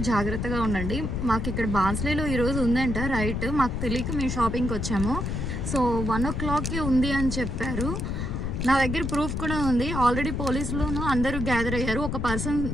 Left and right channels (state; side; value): noise; left; rumble, 2 dB below the sound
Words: జాగ్రత్తగా ఉండండి. మాకు ఇక్కడ బాన్స్లీలో ఈరోజు ఉందంట రైట్, మాకు తెలియక మేము షాపింగ్కి వచ్చాము. సో 1 o'clockకి ఉంది అని చెప్పారు. నా దగ్గర ప్రూఫ్ కూడా ఉంది. ఆల్రెడీ పోలీసులోనూ అందరూ గ్యాదర్ అయ్యారు. ఒక